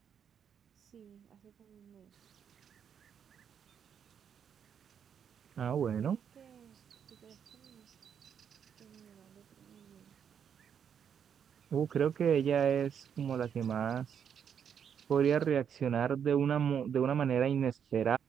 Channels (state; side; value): quieter; left; 7.9 dB